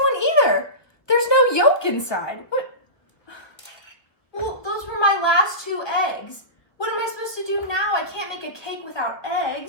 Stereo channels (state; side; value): late; right; 1.5 ms